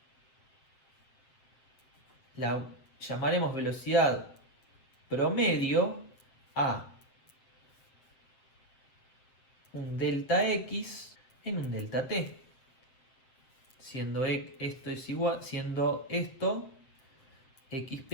La llamaremos velocidad promedio a un delta x en un delta t, siendo esto x'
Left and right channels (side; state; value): right; late; 7.8 ms